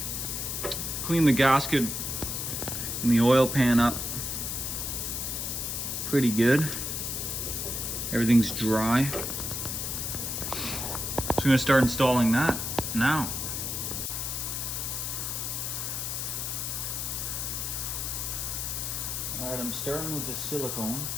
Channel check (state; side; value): noise; left; hiss, 3 dB below the sound